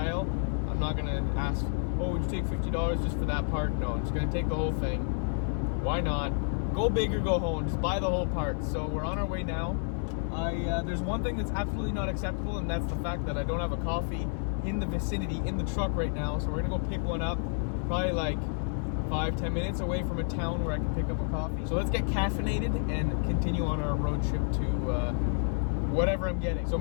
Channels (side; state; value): right; silent; 58 dB below the other